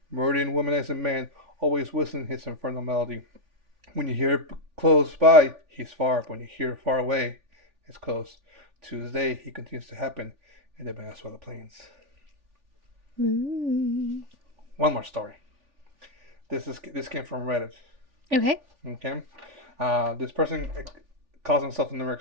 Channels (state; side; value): late; left; 3.4 ms